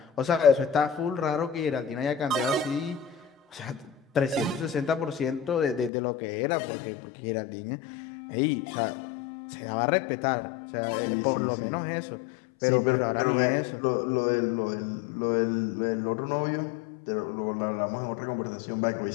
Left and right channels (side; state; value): right; drops out; at 5.9 s